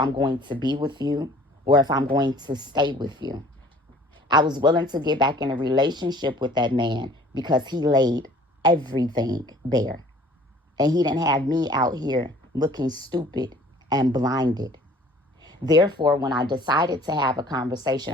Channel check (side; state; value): both; normal; correlation 0.52